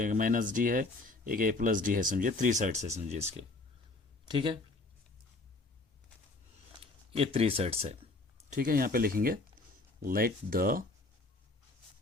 माइनस डी है, एक ए प्लस डी है, समझिए 3 साइड्स है समझिए इसके, ठीक है, ये 3 साइड्स है, ठीक है। यहाँ पे लिखेंगे let the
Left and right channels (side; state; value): right; quieter; 3.2 dB